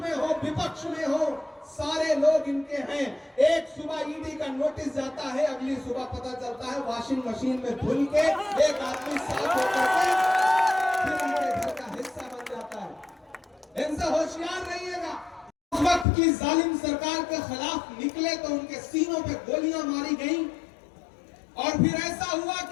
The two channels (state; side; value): drops out; right; at 16.1 s